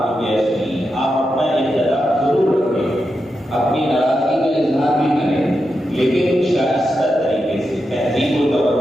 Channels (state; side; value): normal; both; correlation 0.87